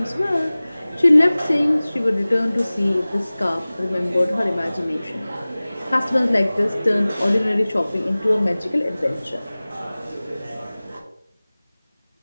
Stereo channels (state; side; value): inverted; both; correlation -0.99